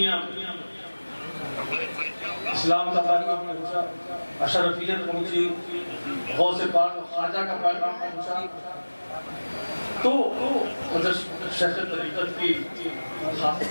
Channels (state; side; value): inverted; both; correlation -1.00